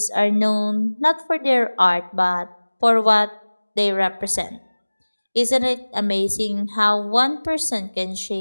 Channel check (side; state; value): both; inverted; correlation -1.00